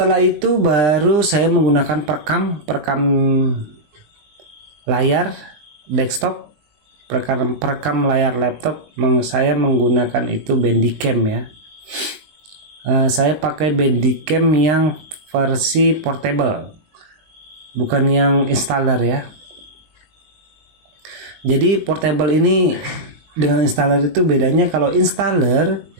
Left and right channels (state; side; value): late; left; 20 ms